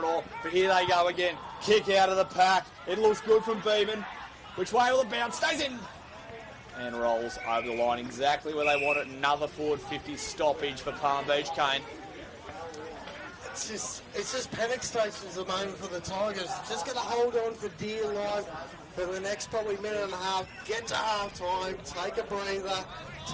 but here they go again. Kick out of the pack. It looks good from Beeman. Which way will it bounce? Stays in. And rolls over the line exactly where they want it. Another forward 50 stoppage for Palm Beach, Kane. It's just panic stations at the moment for the Tigers. Just going to hold on for dear life. for the next probably minute and a half. Get to half time, take a breather,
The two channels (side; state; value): both; identical; correlation 1.00